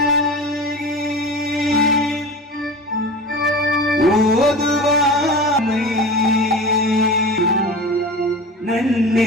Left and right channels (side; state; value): both; normal; correlation 0.33